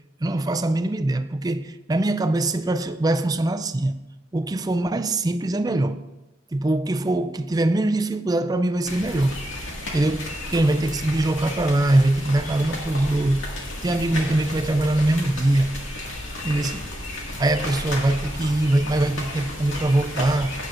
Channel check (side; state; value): both; normal; correlation 0.85